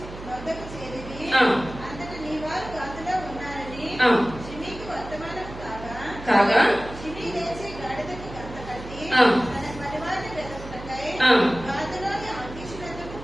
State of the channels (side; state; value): right; noise; hum, 13 dB below the sound